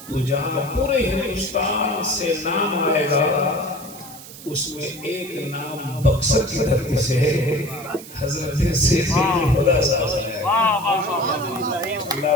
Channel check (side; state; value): right; noise; hiss, 16 dB below the sound